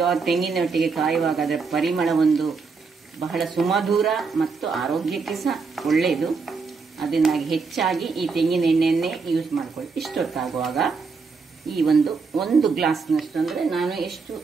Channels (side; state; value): left; quieter; 4.8 dB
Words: ತೆಂಗಿನೊಟ್ಟಿಗೆ ಕಾಯುವಾಗ ಅದರ ಪರಿಮಳ ಒಂದು ಬಹಳ ಸುಮಧುರ ಮತ್ತು ಆರೋಗ್ಯಕ್ಕೆ ಸಹ ಒಳ್ಳೆಯದು. ಅದರಿಂದಾಗಿ ಹೆಚ್ಚಾಗಿ ಈ ತೆಂಗಿನ ಎಣ್ಣೆಯನ್ನೇ ಯೂಸ್ ಮಾಡ್ಕೊಳ್ಳಿ. ಇಷ್ಟೊತ್ತಾಗುವಾಗ ಈ ಒಂದು ಗ್ಲಾಸ್ನಷ್ಟು, ಅಂದರೆ ನಾನು ಎಷ್ಟು